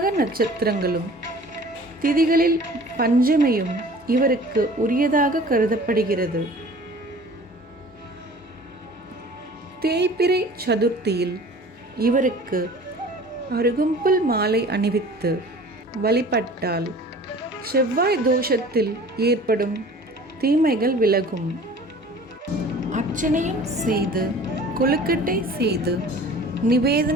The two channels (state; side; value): normal; both; correlation 0.45